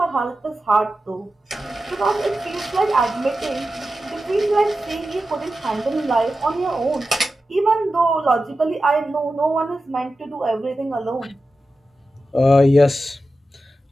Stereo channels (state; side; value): normal; both; correlation 0.92